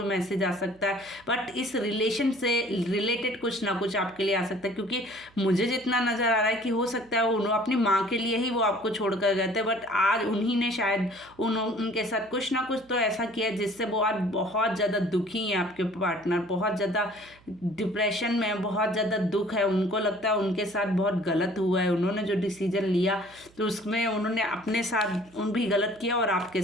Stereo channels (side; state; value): right; noise; hum, 28 dB below the sound